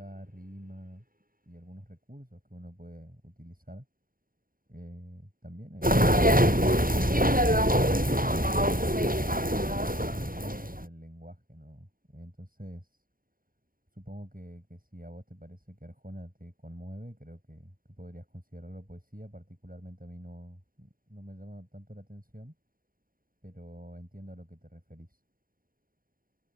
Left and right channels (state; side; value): late; left; 0.41 ms